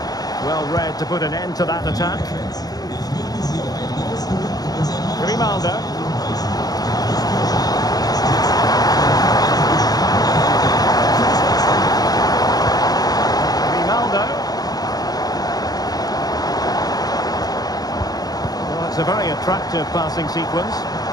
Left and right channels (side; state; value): right; late; 0.19 ms